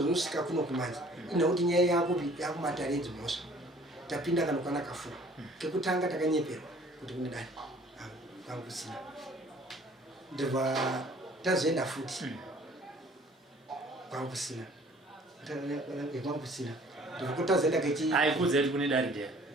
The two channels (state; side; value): normal; both; correlation 0.54